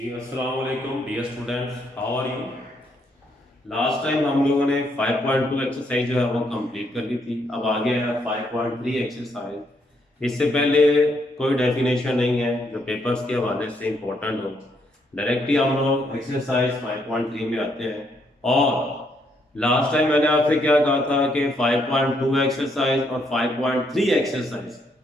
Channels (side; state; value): both; normal; correlation 0.74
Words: अस्सलाम वालेकुम dear students, how are you. Last time हम लोगों ने 5.2 एक्सरसाइज जो है वो कंप्लीट कर ली थी। अब आगे है 5.3 एक्सरसाइज। इससे पहले कोई डेफिनेशन नहीं है जो पेपर्स के हवाले से इंपॉर्टेंट हो। डायरेक्टली हम लोग एक्सरसाइज 5.3 में आते हैं। और लास्ट टाइम मैंने आपसे क्या कहा था कि 5.2 एक्सरसाइज और 5.3 एक्सरसाइज